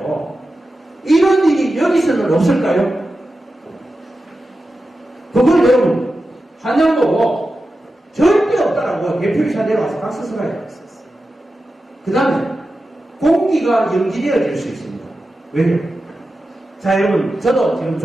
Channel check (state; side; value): normal; both; correlation 0.92